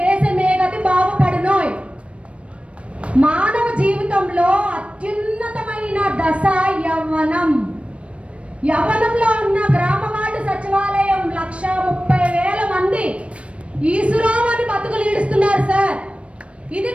దేశమే గతి బాగుపడునోయ్. మానవ జీవితంలో అత్యున్నతమైన దశ యవ్వనం. యవ్వనంలో ఉన్న గ్రామ వార్డు సచివాలయం 1,30,000 మంది ఈశ్వరం అని బతుకులు ఈడుస్తున్నారు సార్. ఇది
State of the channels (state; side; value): late; left; 0.061 ms